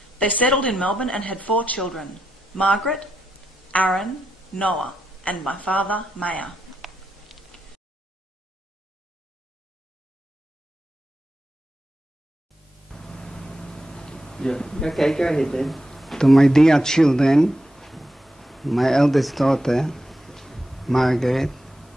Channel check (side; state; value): both; normal; correlation 0.86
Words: They settled in Melbourne and had 4 children, Margaret, Aaron, Noah, and my father, Maya. Yeah. Okay, go ahead then. To my dear children, my eldest daughter, Margaret,